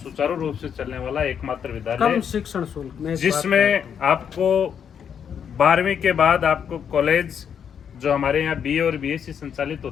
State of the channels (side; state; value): right; quieter; 7.9 dB